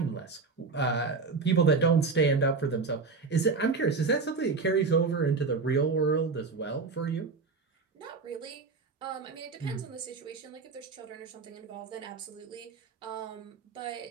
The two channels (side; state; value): left; quieter; 4.5 dB